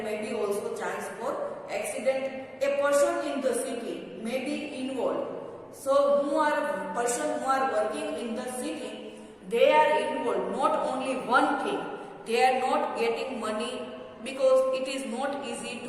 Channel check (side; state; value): both; identical; correlation 1.00